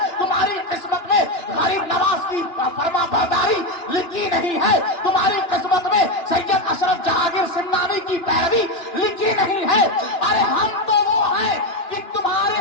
तुम्हारी किस्मत में गरीब नवाज की फरमा बरदारी लिखी नहीं है। तुम्हारी किस्मत में सैयद अशरफ जहांगीर सिमनानी की पैरवी लिखी नहीं है। अरे हम तो वो हैं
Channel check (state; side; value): late; right; 2.9 ms